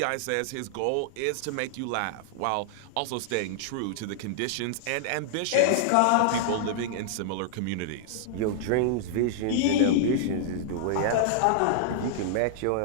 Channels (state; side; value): different; both; correlation -0.01